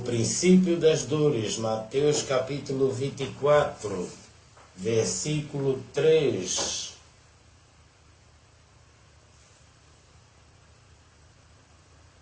das dores. Mateus capítulo 24, versículo 3.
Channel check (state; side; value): identical; both; correlation 1.00